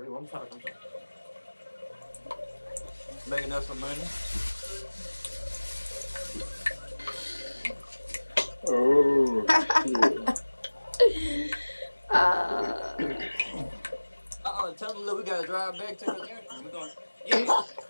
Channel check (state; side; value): inverted; both; correlation -1.00